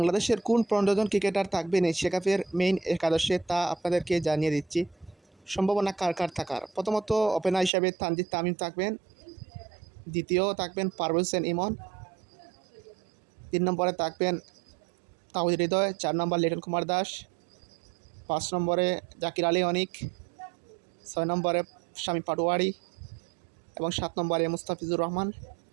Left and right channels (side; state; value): left; drops out; at 7.7 s